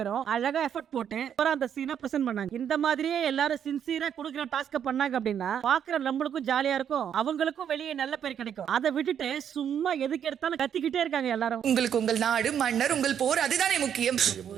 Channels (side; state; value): left; quieter; 8.8 dB